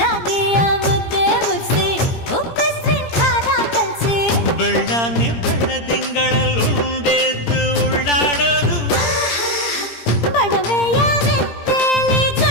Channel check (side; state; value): right; late; 17 ms